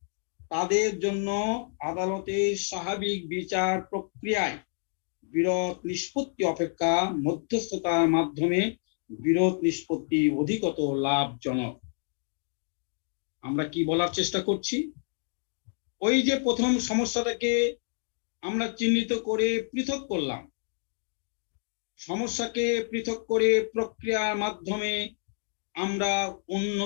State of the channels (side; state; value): right; silent; 58 dB below the other